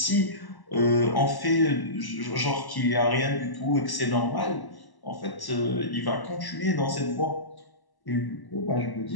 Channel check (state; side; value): late; right; 1.1 ms